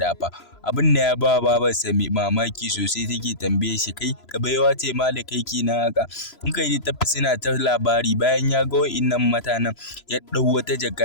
fa. Abin da ya ba babarsa mamaki sosai, take tambaye shi, kai ka baiwa ce ma da kai kenan haka? In kai ta tafi suna ta labari. Bayan ya ga wa'innan mutanen ya ɗau wata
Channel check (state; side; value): late; right; 3.0 ms